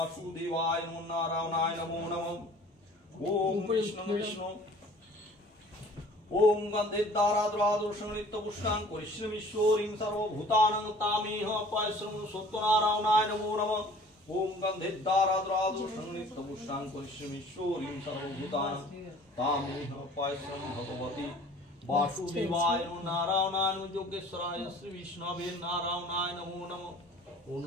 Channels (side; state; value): both; normal; correlation 0.49